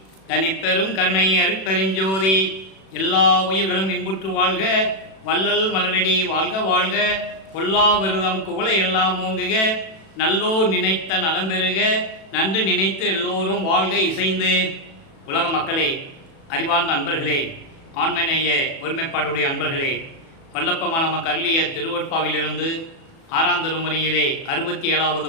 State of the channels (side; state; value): right; late; 37 ms